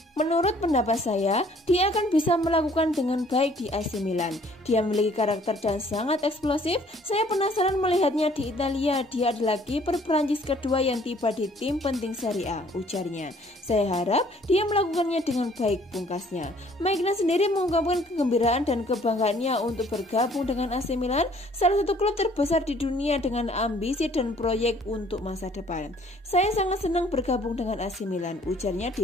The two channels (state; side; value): normal; both; correlation 0.59